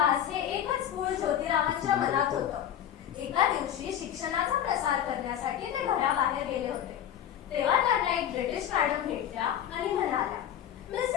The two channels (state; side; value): quieter; right; 10.3 dB